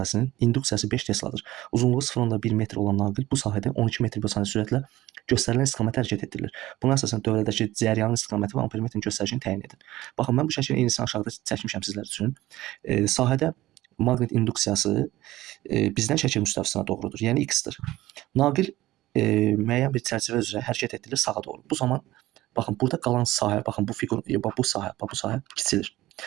induksiyası 5 Tesladır. Uzunluğu 0,1 metr olan naqil bu sahədə 12 metr bölü saniyə sürətlə göstərilən istiqamətə hərəkət etdirilir. Buna əsasən dövrədəki cəryanın istiqaməti və ampermetrin göstəricini təyin edin. Baxın, mən bu şəklin eynisini aşağıda çəkmişəm sizlər üçün. Sahədə maqnit induksiyası bizdən şəkil müstəvisinə doğrudur, yəni x-dir. Naqil müəyyən bir çərçivə üzrə hərəkət etdirilir sağa doğru. Bu zaman baxın, burada qalan sahə, baxın bu fiqur, bu sahə kiçilir.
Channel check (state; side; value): quieter; left; 16.5 dB